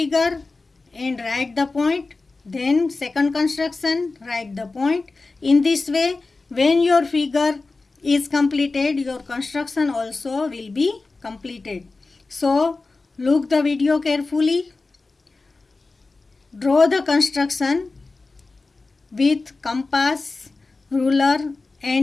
and write the point, then second construction, write the point. In this way, when your figure is completed, your construction also will be completed. So, look the video carefully. Draw the construction with compass, ruler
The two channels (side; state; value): right; quieter; 3.7 dB